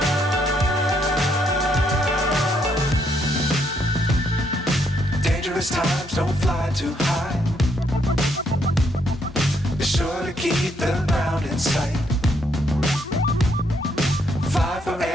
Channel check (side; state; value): both; normal; correlation 0.73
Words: Times don't fly too high. Be sure to keep the ground in sight. Fly